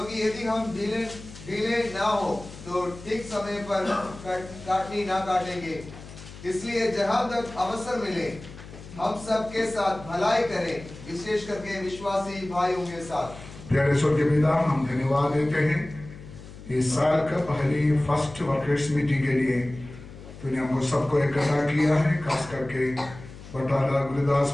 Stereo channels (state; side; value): noise; left; hum, 16 dB below the sound